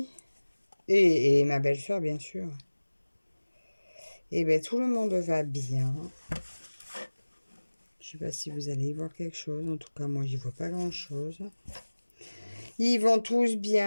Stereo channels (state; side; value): inverted; both; correlation -1.00